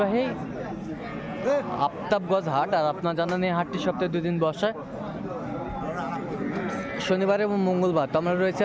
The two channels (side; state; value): both; identical; correlation 1.00